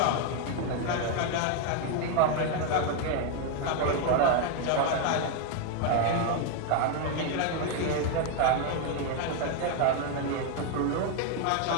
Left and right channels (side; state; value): both; different; correlation 0.01